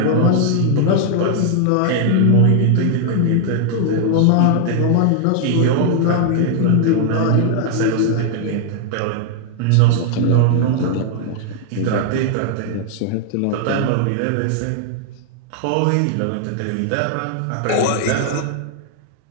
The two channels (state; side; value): different; both; correlation 0.00